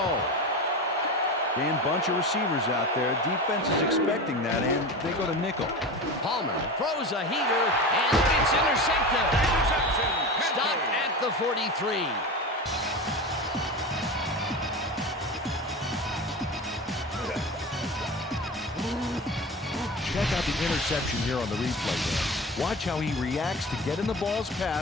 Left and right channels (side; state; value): both; normal; correlation 0.28